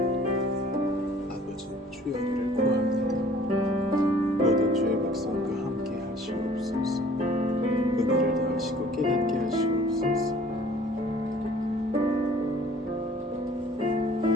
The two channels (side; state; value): both; normal; correlation 0.53